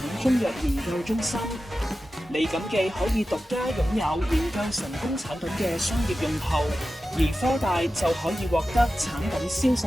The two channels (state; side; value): normal; both; correlation 0.93